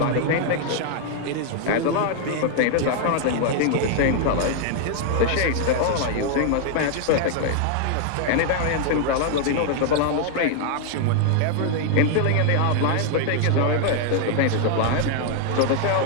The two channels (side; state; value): both; different; correlation 0.00